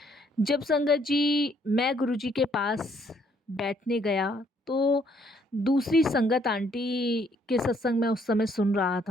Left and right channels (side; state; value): both; normal; correlation 0.67